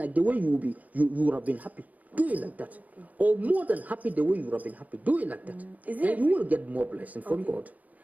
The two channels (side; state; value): left; late; 0.077 ms